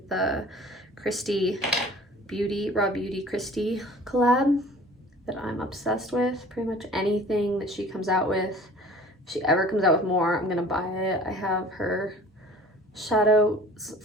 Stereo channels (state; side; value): normal; both; correlation 0.47